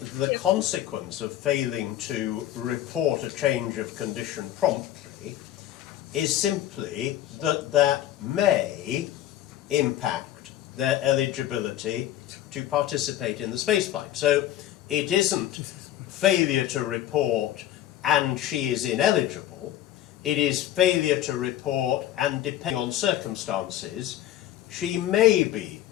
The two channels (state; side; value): quieter; right; 12.8 dB